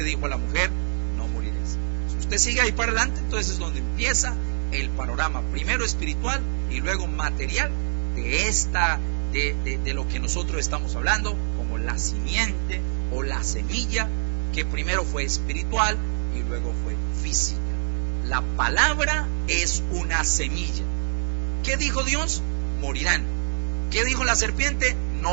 dijo a la mujer, no moriréis. Si usted sigue ahí para adelante, entonces es donde empieza el panorama, primero espiritual y luego material de lo que nosotros estamos hablando, como la simiente o la semilla, que primero fue espiritual y luego fue física. La palabra es una semilla. ¿Qué dijo Dios? Morirán. ¿Qué dijo la serpiente?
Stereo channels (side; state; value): left; silent; 62 dB below the other